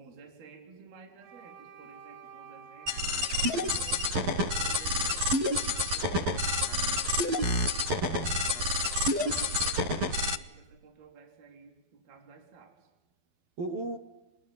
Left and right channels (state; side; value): late; left; 12 ms